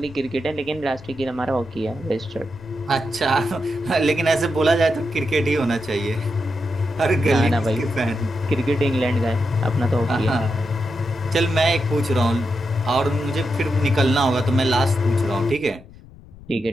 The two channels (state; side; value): noise; left; rumble, 21 dB below the sound